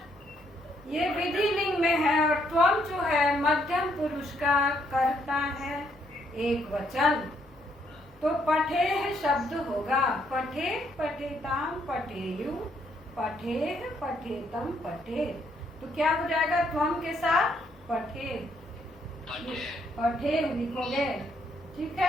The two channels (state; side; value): normal; both; correlation 0.72